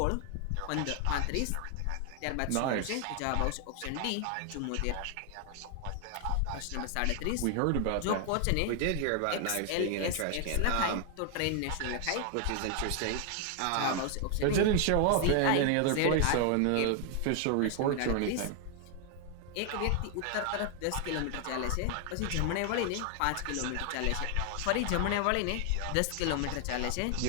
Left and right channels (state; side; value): different; both; correlation 0.00